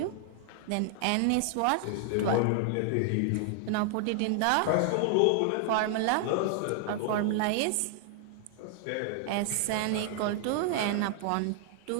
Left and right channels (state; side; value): different; both; correlation 0.00